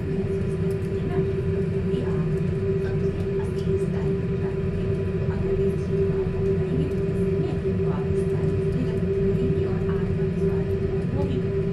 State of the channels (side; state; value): both; identical; correlation 1.00